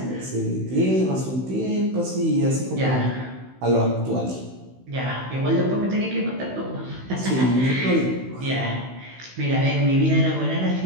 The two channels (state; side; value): late; left; 16 ms